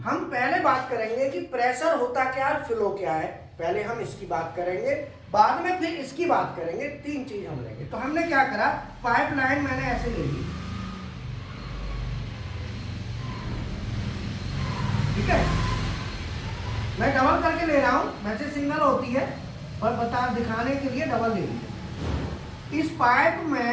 हम पहले बात करेंगे कि प्रेशर होता क्या है, फ्लो क्या है, पहले हम इसकी बात करेंगे, बाद में फिर इसकी बात करेंगे, तीन चीज हम लेंगे। तो हमने क्या करा, पाइपलाइन मैंने ऐसे ले ली, ठीक है, मैं डबल करके ले रहा हूं, वैसे सिंगल होती है पर बता दिखाने के लिए डबल ले ली। इस पाइप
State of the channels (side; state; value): both; identical; correlation 1.00